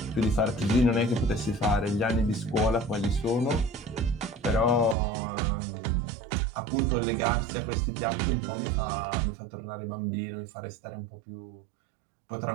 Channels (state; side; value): drops out; left; at 5.0 s